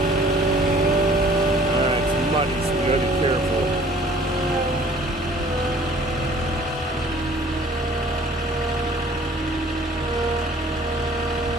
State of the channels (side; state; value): both; normal; correlation 0.53